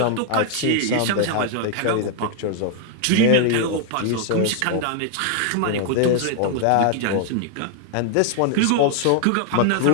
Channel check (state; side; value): different; both; correlation 0.00